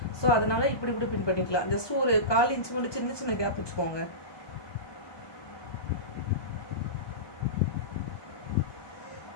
ஸோ அதனால இப்படி கூட பின் பண்ணிக்கலாம். ஜஸ்ட் ஒரு 1/4 இன்ச்சு மட்டும் சின்ன சின்ன கேப் வச்சுக்கோங்க.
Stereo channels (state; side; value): late; right; 1.2 ms